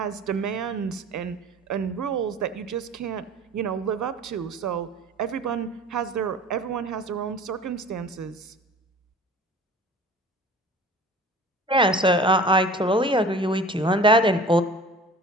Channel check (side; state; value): both; normal; correlation 0.43